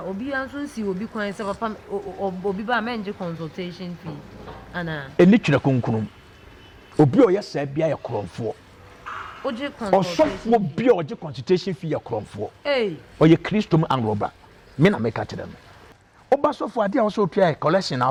obi anso si obi kwan se papa obi ba menje consultation fee ana eni twere kunkunum obi o yesa bia ye kronfo oje consultation osofo bia oje consultation fee ye kronfo oye Christom and roba me na make atire no oba sofo ade a wo so tua collection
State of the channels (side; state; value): both; identical; correlation 1.00